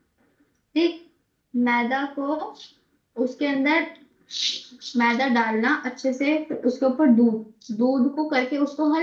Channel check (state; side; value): identical; both; correlation 1.00